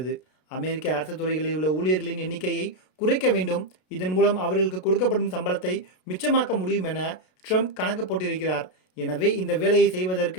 அமெரிக்க அரசு துறைகளில் உள்ள ஊழியர்களின் எண்ணிக்கையை குறைக்க வேண்டும், இதன் மூலம் அவர்களுக்கு கொடுக்கப்படும் சம்பளத்தை மிச்சமாக்க முடியும் என ட்ரம்ப் கணக்கு போட்டிருக்கிறார். எனவே இந்த வேலையை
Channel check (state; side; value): late; right; 33 ms